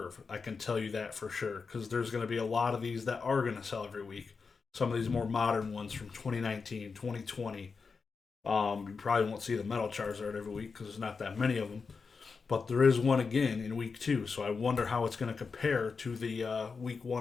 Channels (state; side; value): quieter; right; 5.0 dB